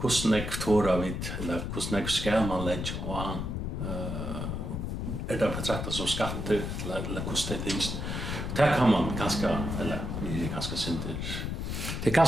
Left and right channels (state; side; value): noise; left; rumble, 3 dB below the sound